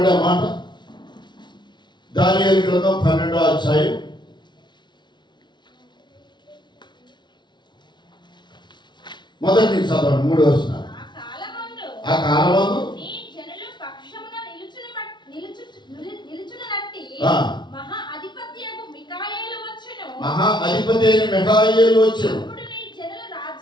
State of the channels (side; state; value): right; late; 0.22 ms